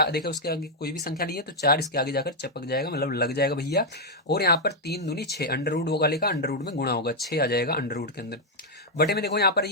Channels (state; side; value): normal; both; correlation -0.02